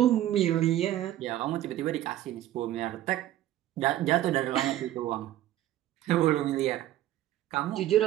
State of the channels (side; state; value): left; quieter; 13.5 dB